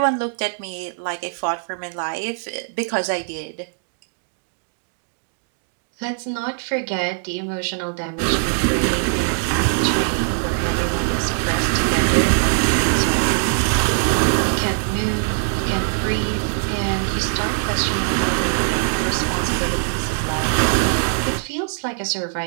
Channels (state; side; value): silent; left; digital silence